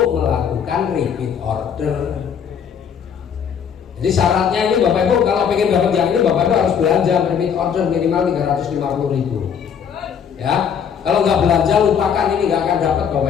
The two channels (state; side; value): quieter; right; 7.6 dB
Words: melakukan repeat order, jadi syaratnya ini Bapak Ibu kalau pengen dapat yang ini Bapak Ibu harus belanja repeat order minimal 350.000. Ya, kalau nggak belanja lupakan, ini nggak akan dapat